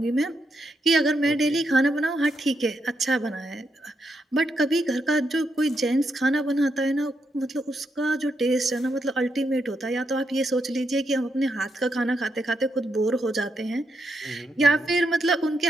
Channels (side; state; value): both; normal; correlation 0.81